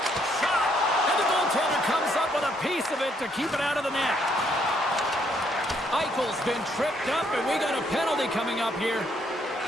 Shot! And the goaltender comes up with a piece of it to keep it out of the net. Eichel's been tripped up, and we got a penalty coming up here.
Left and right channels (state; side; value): normal; both; correlation 0.71